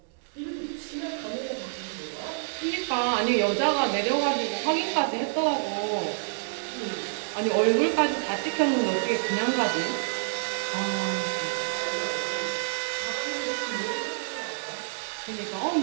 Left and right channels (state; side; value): silent; left; digital silence